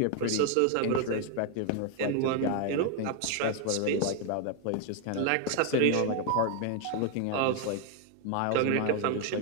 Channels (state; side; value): different; both; correlation 0.00